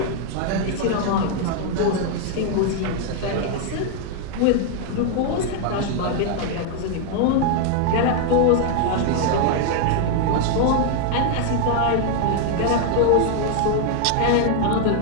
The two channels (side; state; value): both; different; correlation 0.00